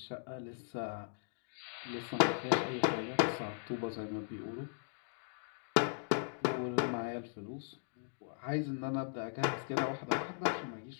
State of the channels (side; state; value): right; silent; digital silence